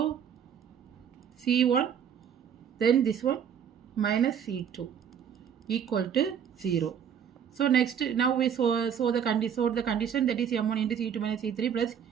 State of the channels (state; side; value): quieter; left; 8.3 dB